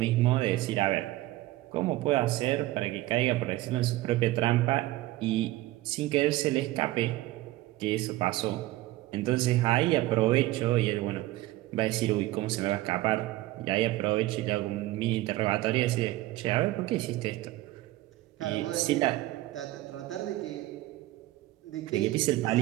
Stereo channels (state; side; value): quieter; left; 17.0 dB